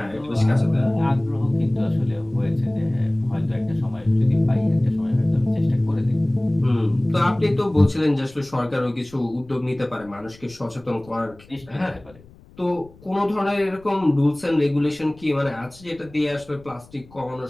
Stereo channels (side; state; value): left; noise; rumble, 24 dB below the sound